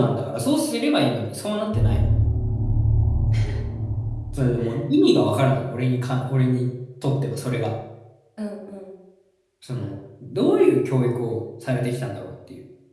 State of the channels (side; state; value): both; identical; correlation 1.00